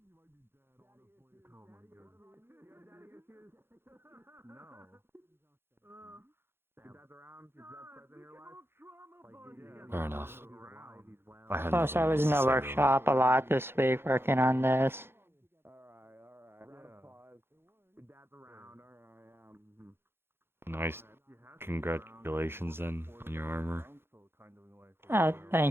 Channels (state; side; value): late; left; 0.11 ms